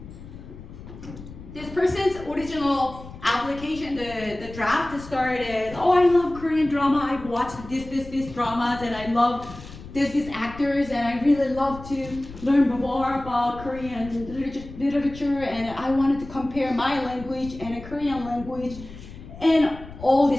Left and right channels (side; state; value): left; noise; rumble, 15 dB below the sound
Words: This person's original application, the draft started, oh, I love Korean drama, I've watched these dramas, and I love these actors, and I really love to learn more about Korean literature, and I wanted to compare my language and a Korean language, and all